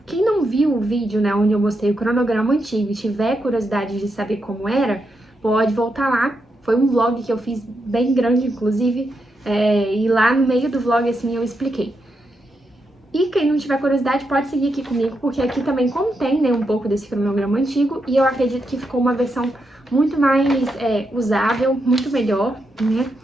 não viu o vídeo, né, onde eu mostrei o cronograma antigo e tiver curiosidade de saber como era, pode voltar lá. Foi um vlog que eu fiz bem grande, inclusive, e lá no meio do vlog, assim, eu expliquei. E quem não tiver curiosidade pode seguir aqui comigo, porque aqui também contém, né, um pouco desse cronograma antigo, e eu acredito que ficou uma versão muito mais usável, muito melhor, né?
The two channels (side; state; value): both; normal; correlation 0.84